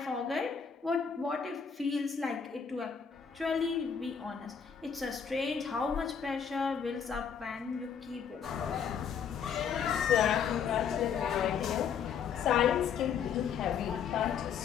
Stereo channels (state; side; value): quieter; right; 7.1 dB